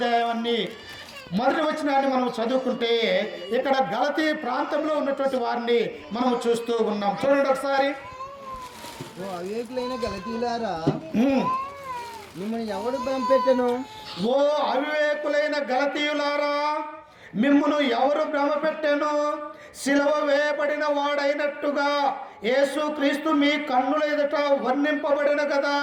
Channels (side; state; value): both; identical; correlation 1.00